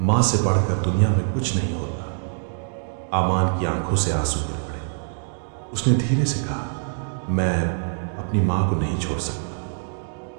से बढ़कर दुनिया में कुछ नहीं होता। अमान की आंखों से आंसू गिर पड़े। उसने धीरे से कहा, मैं अपनी मां को नहीं छोड़ सकता।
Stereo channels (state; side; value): silent; left; digital silence